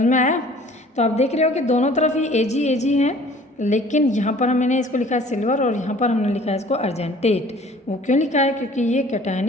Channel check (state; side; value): normal; both; correlation 0.51